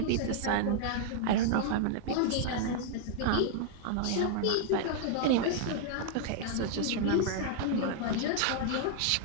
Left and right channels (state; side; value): different; both; correlation -0.01